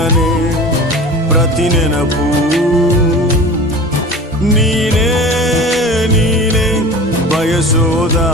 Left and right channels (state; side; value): normal; both; correlation 0.37